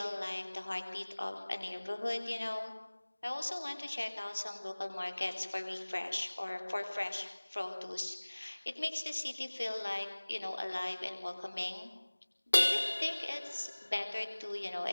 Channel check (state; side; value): inverted; both; correlation -1.00